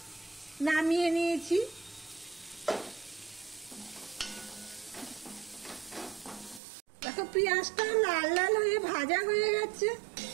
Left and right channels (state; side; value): drops out; left; at 6.6 s